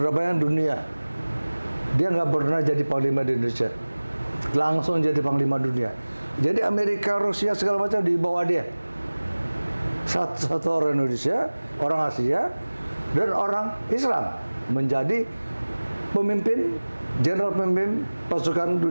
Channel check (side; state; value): both; inverted; correlation -1.00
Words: Dunia Dia nggak pernah jadi panglima di Indonesia. Langsung jadi panglima dunia. Jadi Amerika, Rusia segala macam di bawah dia. Satu orang Indonesia, orang Asia, dan orang Islam menjadi pemimpin, jenderal pemimpin pasukan